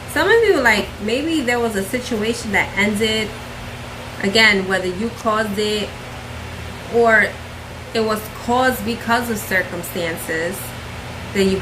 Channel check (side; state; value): both; identical; correlation 1.00